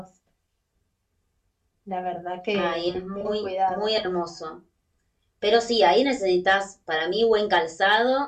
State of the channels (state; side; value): identical; both; correlation 1.00